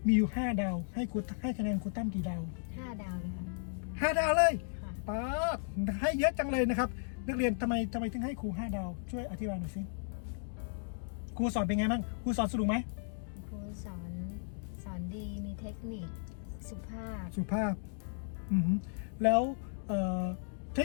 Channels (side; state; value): right; silent; digital silence